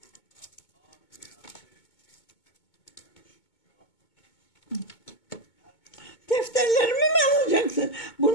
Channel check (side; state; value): right; late; 2.2 ms